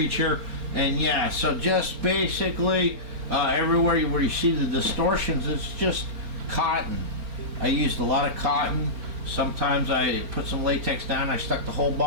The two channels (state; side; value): late; left; 4.4 ms